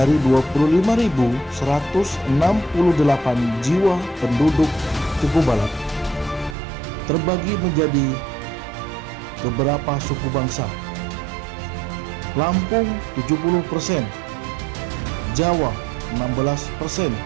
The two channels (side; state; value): left; drops out; at 6.6 s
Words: 25.168 jiwa penduduk Cukubalak terbagi menjadi beberapa suku bangsa. Lampung 70%, Jawa 16%,